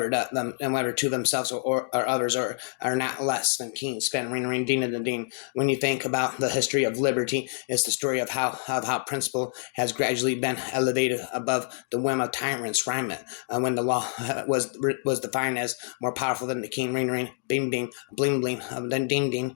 to themselves or others are not less than keen, spend ring ding and dean. When you think about the history of liberty, it's the story of how principle has gradually been elevated above the whim of tyrants. Rhyme it when the law was defined as more powerful than the king. Ring bing bing bling bling then ding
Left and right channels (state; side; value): silent; right; 59 dB below the other